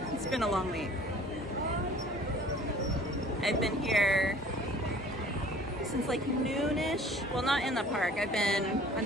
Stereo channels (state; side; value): normal; both; correlation 0.50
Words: It's been a long week. I've been here since like noonish. Well, not in the park. I've been on